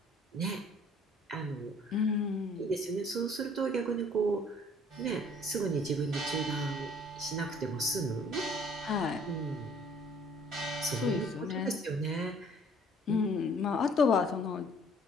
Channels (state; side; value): normal; both; correlation 0.56